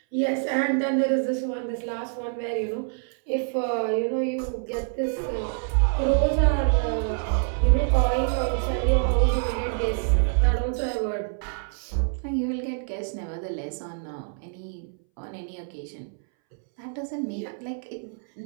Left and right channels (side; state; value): left; silent; 61 dB below the other